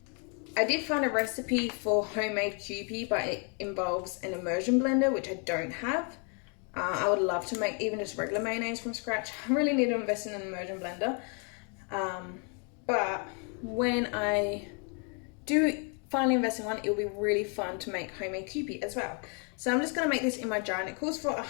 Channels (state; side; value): quieter; right; 38.1 dB